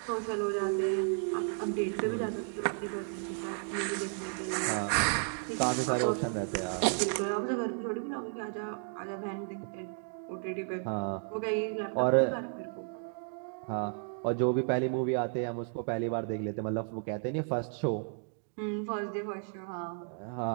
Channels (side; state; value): left; silent; 56 dB below the other